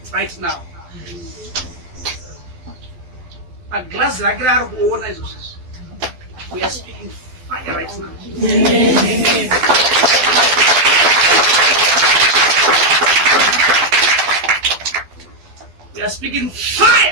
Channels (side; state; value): left; late; 12 ms